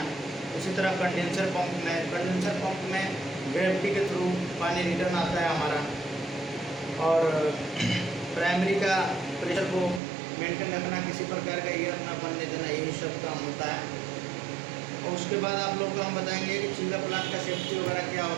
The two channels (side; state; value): left; drops out; at 10.0 s